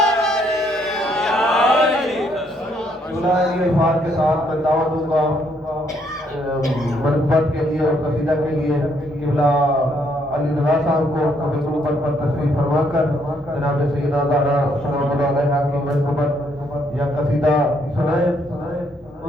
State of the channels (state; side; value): normal; both; correlation 0.70